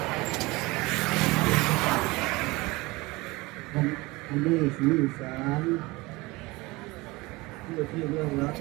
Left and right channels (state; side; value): quieter; left; 22.6 dB